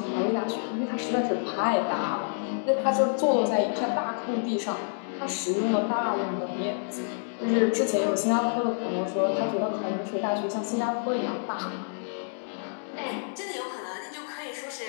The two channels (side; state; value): right; silent; digital silence